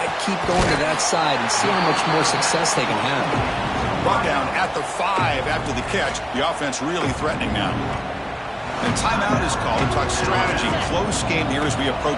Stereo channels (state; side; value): identical; both; correlation 1.00